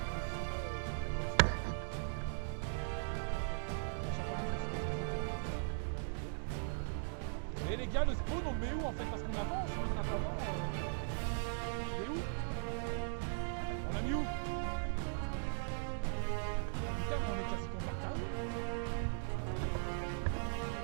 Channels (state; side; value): silent; left; digital silence